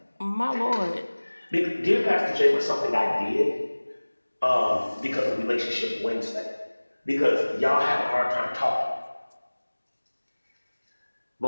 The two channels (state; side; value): inverted; both; correlation -1.00